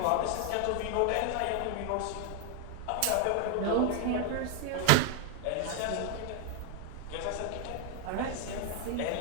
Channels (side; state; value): both; different; correlation 0.00